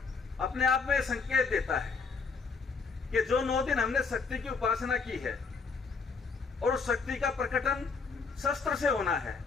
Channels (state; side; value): quieter; right; 4.8 dB